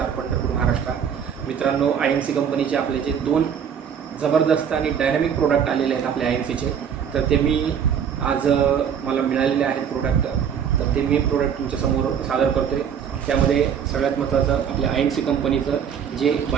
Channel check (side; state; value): left; quieter; 7.9 dB